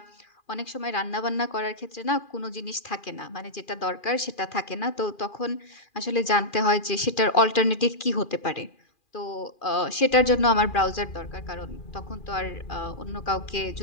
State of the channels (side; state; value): right; late; 2.4 ms